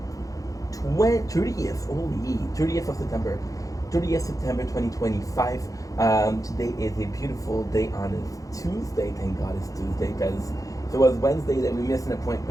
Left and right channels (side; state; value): right; late; 0.17 ms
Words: 30th of September. 30th September 2025. Today is a beautiful day on this Tuesday. Thank God it's Tuesday, because if it was Wednesday that we missed an